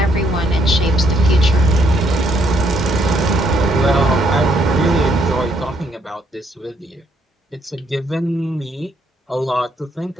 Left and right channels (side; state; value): both; normal; correlation 0.71